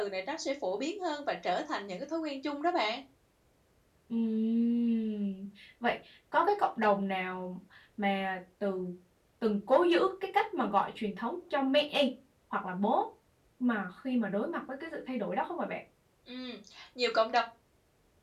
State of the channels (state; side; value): identical; both; correlation 1.00